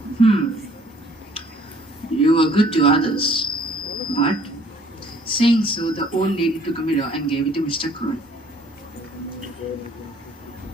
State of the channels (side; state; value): both; normal; correlation 0.58